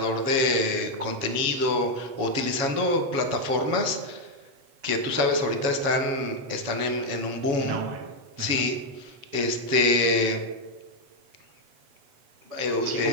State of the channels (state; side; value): late; left; 7.2 ms